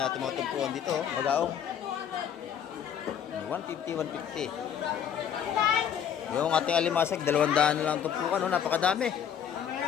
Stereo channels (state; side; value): quieter; right; 8.7 dB